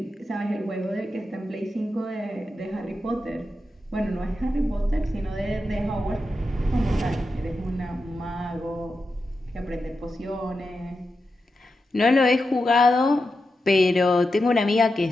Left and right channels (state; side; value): normal; both; correlation 0.89